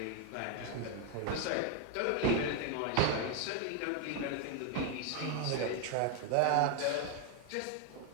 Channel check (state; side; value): different; both; correlation 0.01